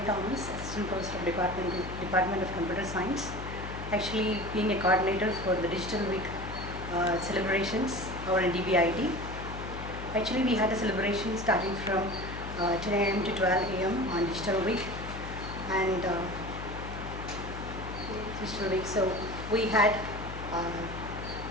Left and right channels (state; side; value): noise; left; hum, 8 dB below the sound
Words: Thomas, Assistant Professor of Department of Computer Science. Actually, being a coordinator for the Digital Week celebrations over in Dbit. Actually, we had a celebration starting from 10 a.m. to 12 a.m. on Digital Week, and Digital Week. So we had